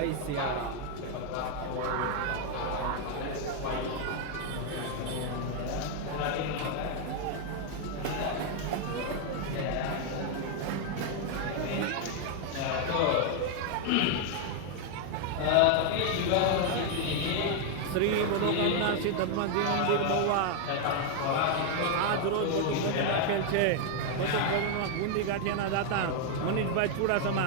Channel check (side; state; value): both; different; correlation 0.00